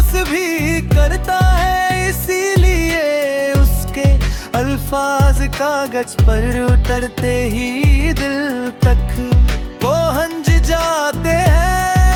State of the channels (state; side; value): identical; both; correlation 1.00